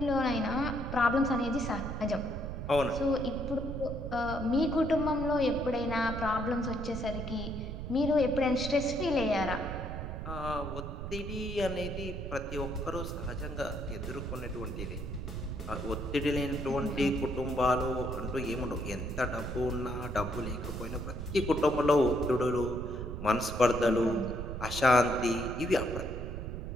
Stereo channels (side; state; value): right; noise; rumble, 6 dB below the sound